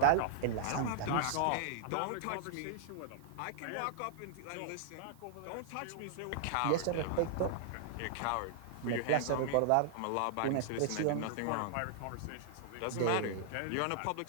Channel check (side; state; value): both; different; correlation -0.01